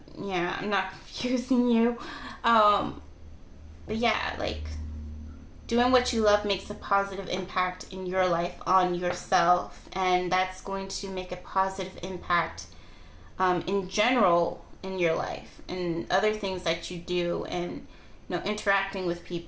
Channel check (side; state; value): both; identical; correlation 1.00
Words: yeah, I'm not confusing you. But yeah, like, doing what you love makes a positive impact in your life on yourself, and that's going to make a positive impact in general in your life and other things that you do, and, you know, interacting with